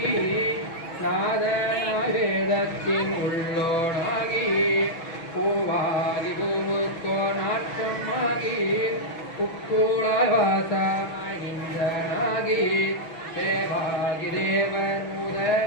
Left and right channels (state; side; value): late; right; 6.1 ms